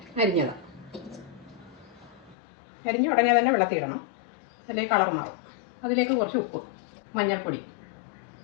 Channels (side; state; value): right; drops out; at 2.4 s